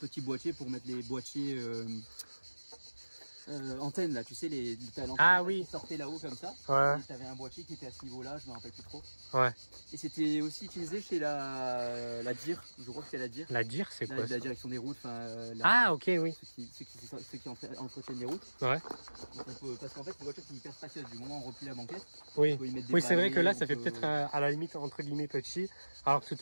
boîtier pour mettre les boîtiers antennes là, tu sais, t'as Ah oui. qui sortait là-haut comme ça. Ouais. Tu avais un boîtier qui était à ce niveau-là, je me rappelle plus trop. Ouais. Et c'était aussi utilisé chez la DIR, je crois que c'était la DIR. La DIR, c'est quoi ça? La direction des routes. Ah ok, oui. Ceux qui entretiennent les routes. Ouais. Donc parce qu'en fait, une voiture qui est hyper spacieuse, du moment où on replie la banquette. Oui, oui c'est vrai que là, ça fait peut-être à la limite entre guillemets petit. Alors que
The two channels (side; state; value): both; inverted; correlation -1.00